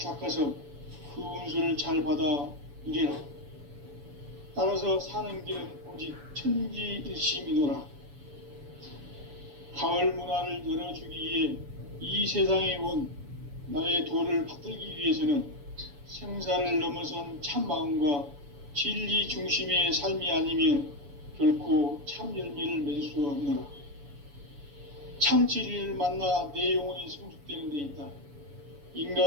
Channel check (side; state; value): left; late; 7.0 ms